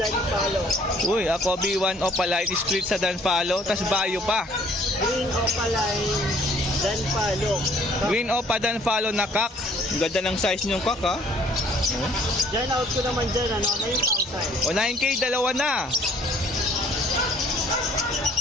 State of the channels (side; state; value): both; normal; correlation 0.58